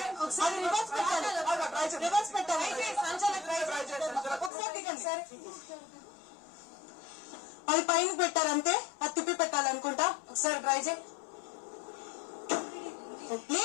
ఒకసారి రివర్స్ పెట్టాలి, రివర్స్ పెట్టాలి. ఒకసారి దిగండి సరే. అది పైన పెట్టారంటే అది తిప్పి పెట్టాలనుకుంటా. ఒకసారి ట్రై చేయి.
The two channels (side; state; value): right; drops out; at 4.5 s